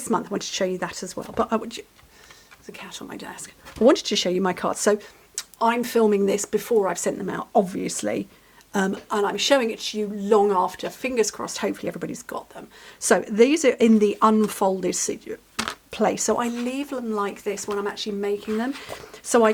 month, I wanted to show you that as well. But there's a cat on my desk. I wanted to show you my cards. So I'm filming this before I've sent them out, obviously. And I'm showing it to you long after. Fingers crossed, hopefully everybody's got them. So these are in the unfolded place. So I leave them like this when I'm actually making them. So I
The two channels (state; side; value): identical; both; correlation 1.00